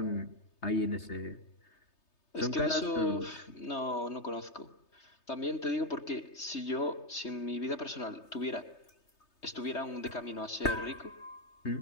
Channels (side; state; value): right; late; 3.3 ms